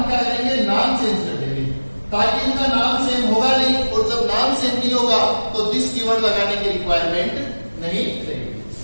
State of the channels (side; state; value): both; inverted; correlation -1.00